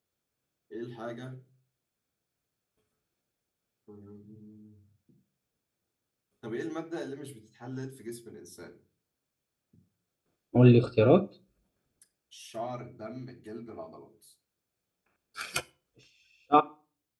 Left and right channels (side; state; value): both; identical; correlation 1.00